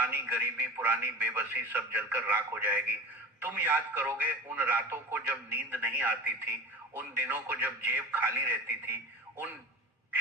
गरीबी, पुरानी बेबसी सब जलकर राख हो जाएगी। तुम याद करोगे उन रातों को जब नींद नहीं आती थी, उन दिनों को जब जेब खाली रहती थी, उन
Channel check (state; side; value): normal; both; correlation 0.32